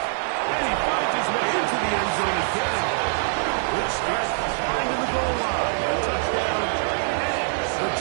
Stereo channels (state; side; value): silent; left; digital silence